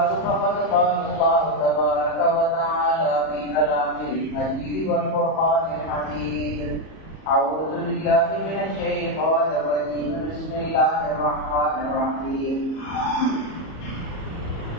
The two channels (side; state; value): right; late; 38 ms